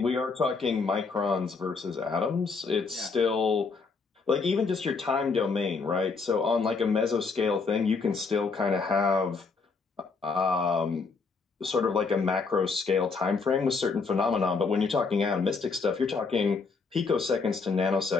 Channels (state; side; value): quieter; right; 4.6 dB